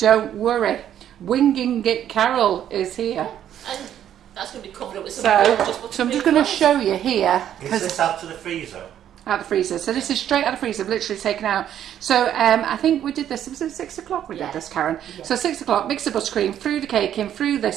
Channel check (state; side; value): quieter; left; 10.5 dB